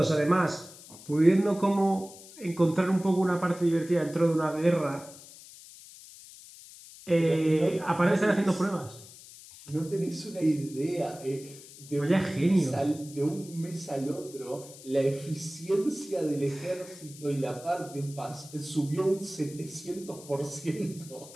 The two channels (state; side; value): noise; left; hiss, 18 dB below the sound